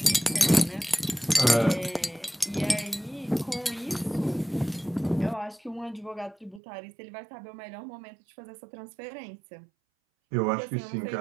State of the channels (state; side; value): drops out; left; at 6.6 s